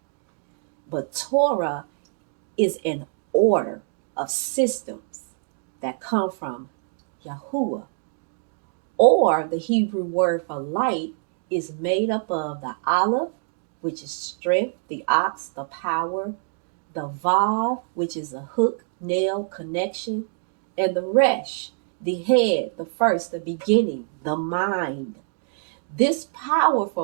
But Torah is an order of systems that come from Yahuwah. Or the Hebrew word for light is made up of the Aleph, which is strength, the ox, the power, the Vav, which is a hook, nail, connection, and the Resh, the head, the first, the beginning, the mind. This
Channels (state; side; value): silent; left; 62 dB below the other